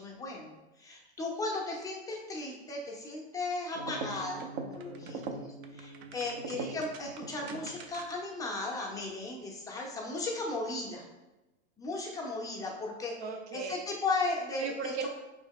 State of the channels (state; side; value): normal; both; correlation 0.33